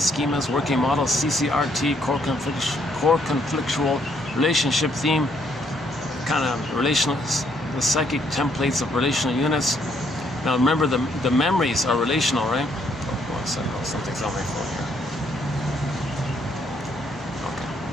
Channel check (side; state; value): both; normal; correlation 0.70